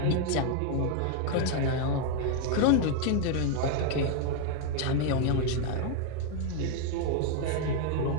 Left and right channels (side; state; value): both; different; correlation 0.01